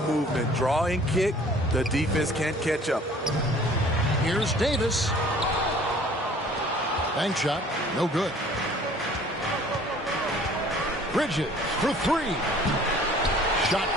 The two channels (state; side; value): normal; both; correlation 0.52